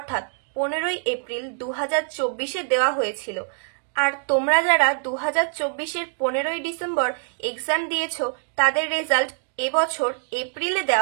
15ই এপ্রিল 2024-এ দেওয়া হয়েছিল। আর তোমরা যারা 2024-এর 15ই ডিসেম্বর এক্সাম দিয়েছো তাদের রেজাল্ট এবছর এপ্রিলে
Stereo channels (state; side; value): silent; left; digital silence